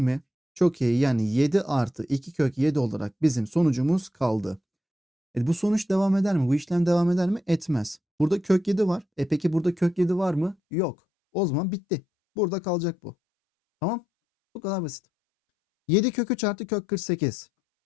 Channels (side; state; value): right; drops out; at 10.6 s